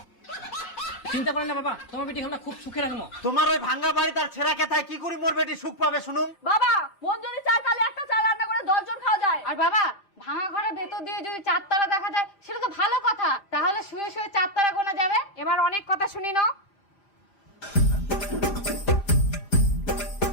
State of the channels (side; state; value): right; late; 5.1 ms